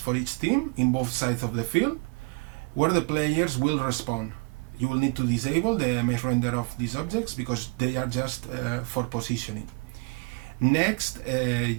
each team in both sides of the field, where the players will respawn. You will need to disable the mesh render of these objects because they are just for positioning. Next,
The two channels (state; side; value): quieter; left; 30.2 dB